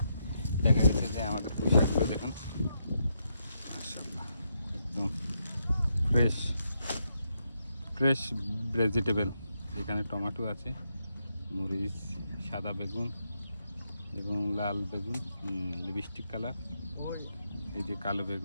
দেখা গেছে যে আমাদের পুঁই শাকগুলো দেখুন মাশাআল্লাহ, একদম ফ্রেশ ফ্রেশ ভেজিটেবল। এখানে টমেটো আছে, মরিচ, সাদা বেগুন এবং লাল বেগুন, লিপস্টিক কালার, এই যে কালো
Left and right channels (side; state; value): both; inverted; correlation -0.80